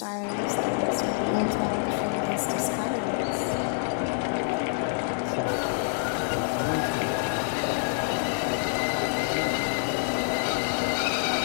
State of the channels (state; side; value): silent; right; digital silence